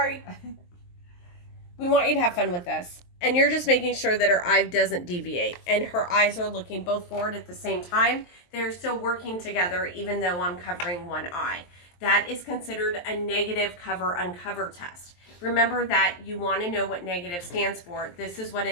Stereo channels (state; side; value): late; right; 23 ms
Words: We want you to have fun with this. And you're just making sure that her eye doesn't deviate. And her eyes are looking both forward at the same time. They're still working together even though I'm covering one eye. That is considered a negative cover uncover test. Remember that you want to know what negative stands for. This is what